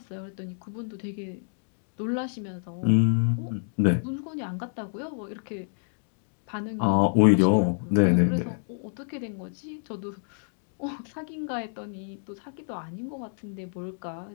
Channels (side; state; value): right; silent; digital silence